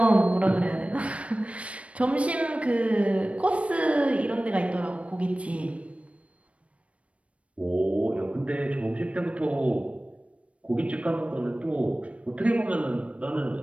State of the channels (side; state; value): left; late; 0.063 ms